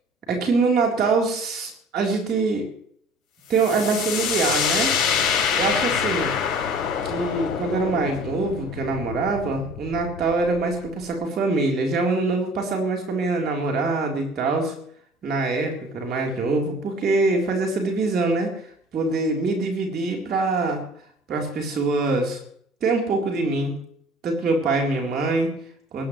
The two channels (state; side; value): normal; both; correlation 0.48